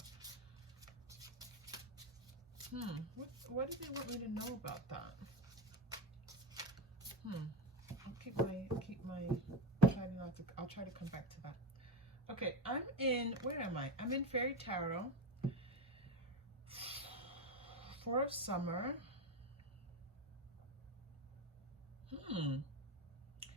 what do they want me to know about that? I'll try to come back to that. Okay, where am I? I'm in Fairy Tarot. 4 of Summer.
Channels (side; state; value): both; normal; correlation 0.20